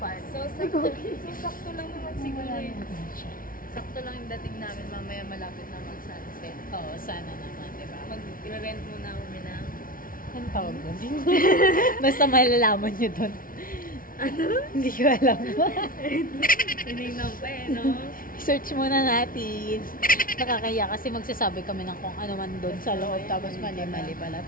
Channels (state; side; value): late; right; 0.41 ms